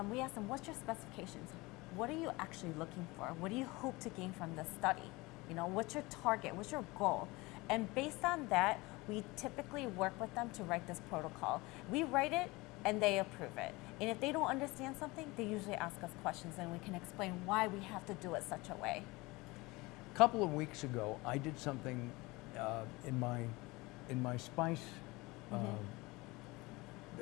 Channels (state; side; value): quieter; right; 22.8 dB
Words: we ask them, what's your specifications? What are you actually looking for? What do you hope to gain from this study? You know, what's your target? What's your goal? And based on that, we typically work with them to write this protocol. We write it and they approve it. And if they don't understand something, they usually ask us questions, and we can explain why we have to do it such a way. A couple of weeks ago, I did something in my spice